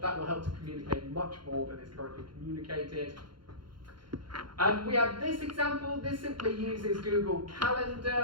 That will help to communicate much more than is currently communicated. We have this example. This simply uses Google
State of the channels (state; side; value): late; left; 0.72 ms